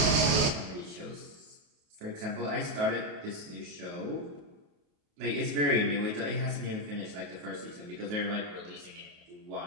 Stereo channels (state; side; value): late; left; 28 ms